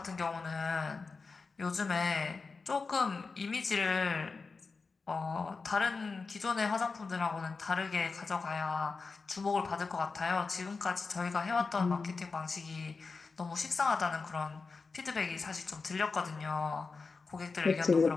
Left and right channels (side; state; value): right; quieter; 4.4 dB